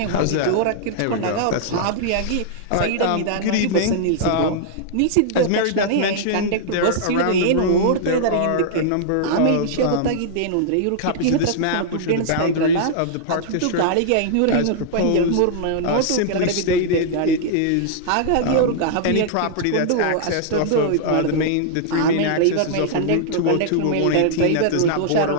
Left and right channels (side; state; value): both; different; correlation -0.01